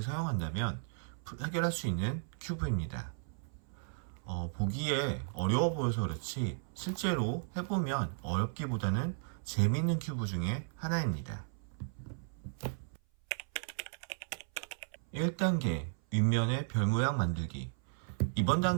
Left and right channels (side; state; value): left; silent; 54 dB below the other